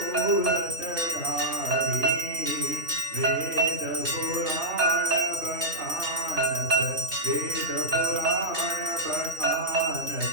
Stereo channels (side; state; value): left; late; 3.1 ms